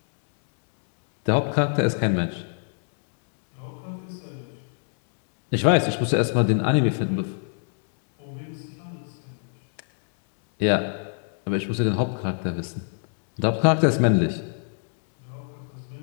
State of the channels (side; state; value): right; silent; 61 dB below the other